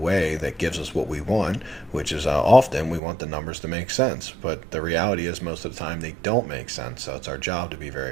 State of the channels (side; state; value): left; drops out; at 3.0 s